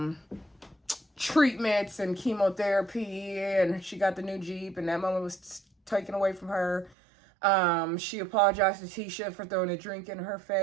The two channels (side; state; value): left; drops out; at 7.0 s